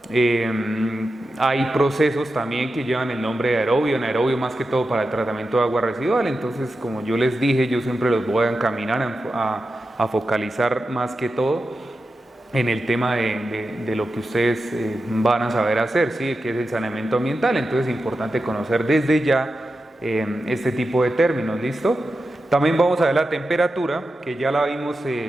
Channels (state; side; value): normal; both; correlation 0.91